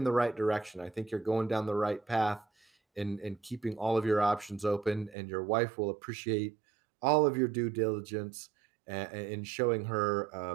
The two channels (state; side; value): drops out; left; at 5.2 s